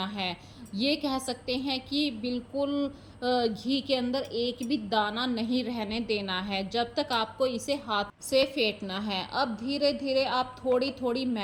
है। ये कह सकते हैं कि बिल्कुल घी के अंदर एक भी दाना नहीं रहने देना है, जब तक आपको इसे हाथ से फेंटना है। अब धीरे धीरे आप थोड़ी थोड़ी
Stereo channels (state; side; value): identical; both; correlation 1.00